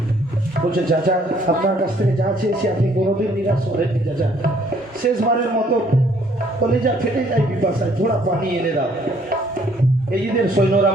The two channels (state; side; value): normal; both; correlation 0.63